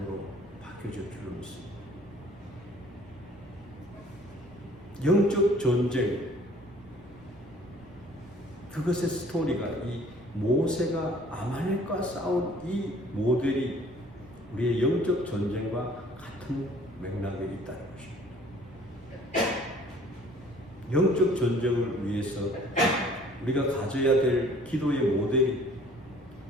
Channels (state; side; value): noise; right; rumble, 25 dB below the sound